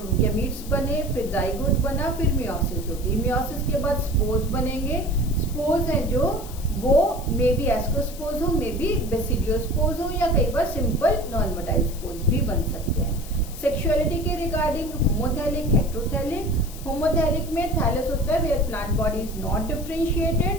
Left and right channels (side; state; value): left; noise; hiss, 16 dB below the sound